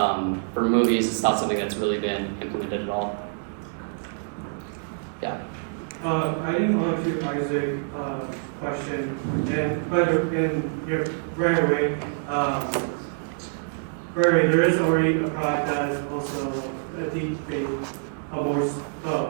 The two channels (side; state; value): left; silent; 61 dB below the other